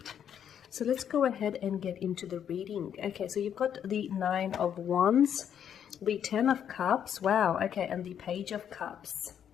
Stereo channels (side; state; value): right; quieter; 9.0 dB